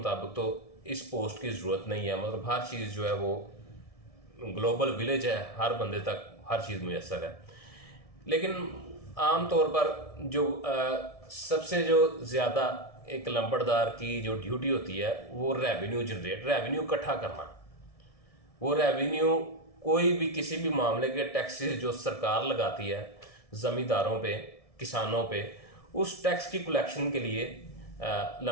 تو اس پوسٹ کی ضرورت نہیں ہے، مطلب ہر چیز جو ہے وہ گلوبل ولیج ہے، ہر بندے تک ہر چیز میسر ہے، لیکن عام طور پر جو سب سے جو زیادہ ایک لمبڑدار کی جو ڈیوٹی ہوتی ہے وہ ریونیو اکٹھا کرنا۔ وہ ریونیو کوئی بھی کسی بھی معاملے کے ٹیکسز جو سرکار لگاتی ہے زمینداروں پہ، کسانوں پہ، اس ٹیکس کی کلیکشن کے لیے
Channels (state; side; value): late; right; 1.7 ms